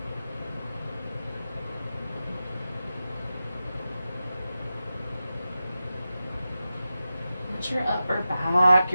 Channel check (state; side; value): inverted; both; correlation -0.92